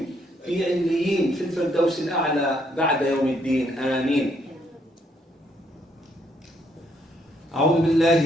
في عليين في الفردوس الأعلى بعد يوم الدين آمين. أعوذ بالله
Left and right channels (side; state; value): both; normal; correlation 0.71